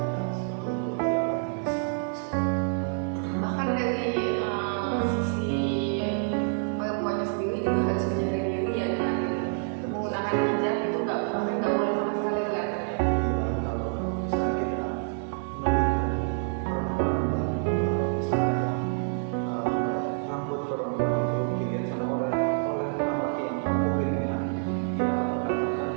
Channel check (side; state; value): left; silent; 58 dB below the other